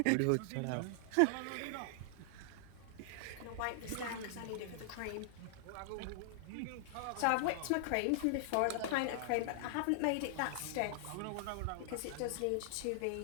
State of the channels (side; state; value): both; different; correlation -0.01